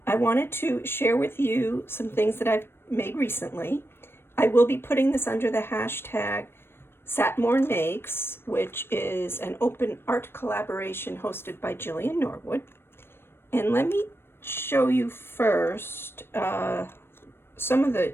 I wanted to share with you some things that I've made recently. I will be putting this under the hashtag Satmorn Makes, which is an open art collaboration hosted by Jillian Norwood. And let me show you first some of the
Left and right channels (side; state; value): right; late; 0.11 ms